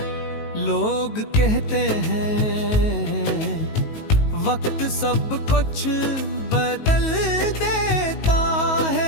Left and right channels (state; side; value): late; right; 19 ms